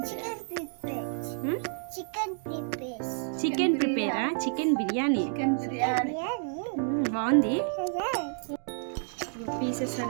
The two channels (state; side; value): silent; left; digital silence